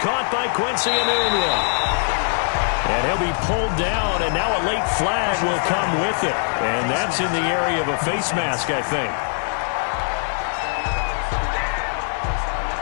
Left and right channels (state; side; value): silent; right; digital silence